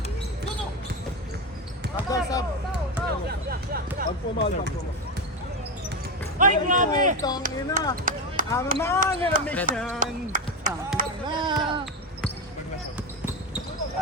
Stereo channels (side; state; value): both; normal; correlation 0.15